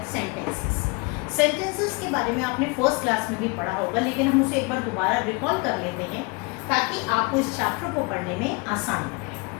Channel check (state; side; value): quieter; right; 28.3 dB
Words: सेंटेंसेस. सेंटेंसेस के बारे में आपने फर्स्ट क्लास में भी पढ़ा होगा, लेकिन हम उसे एक बार दोबारा रिकॉल कर लेते हैं ताकि आपको इस चैप्टर को पढ़ने में आसान हो.